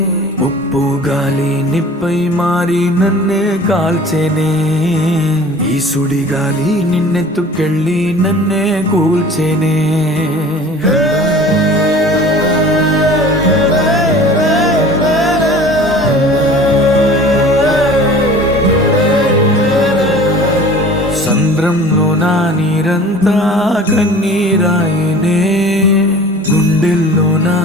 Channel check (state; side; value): normal; both; correlation 0.44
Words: ఉప్పు గాలి నిప్పై మారి నన్నే కాల్చెనే, ఈ సుడి గాలి నిన్నెత్తుకెళ్ళి నన్నే కూల్చెనే. సంద్రంలో నా నీరంతా కన్నీరాయనే, గుండెల్లో నా